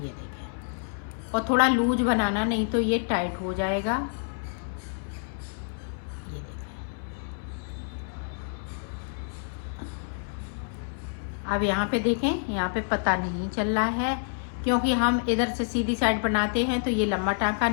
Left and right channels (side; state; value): right; silent; 59 dB below the other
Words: ये देखें, और थोड़ा लूज बनाना, नहीं तो ये टाइट हो जाएगा। ये देखें, अब यहाँ पे देखें, यहाँ पे पता नहीं चल रहा है क्योंकि हम इधर से सीधी साइड बनाते हैं, तो ये लंबा टाका